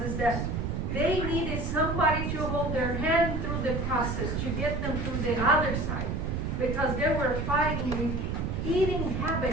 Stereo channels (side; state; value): right; noise; rumble, 1 dB below the sound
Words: is that they needed somebody to hold their hand through the process, to get them through the other side, because they were fighting with eating